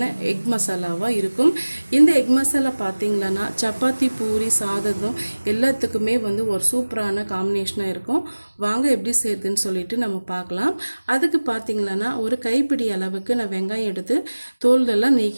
எக் மசாலாவாக இருக்கும். இந்த எக் மசாலா பார்த்திங்களன்னா சப்பாத்தி, பூரி, சாதம் எல்லாத்துக்குமே ஒரு சூப்பரான காம்பினேஷனாக இருக்கும். வாங்க எப்படி செய்யுதுன்னு சொல்லிட்டு நம்ம பார்க்கலாம். அதுக்கு பார்த்திங்களன்னா ஒரு கைப்பிடி அளவுக்கு நான் வெங்காயம் எடுத்து தோலெல்லாம்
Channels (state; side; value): inverted; both; correlation -1.00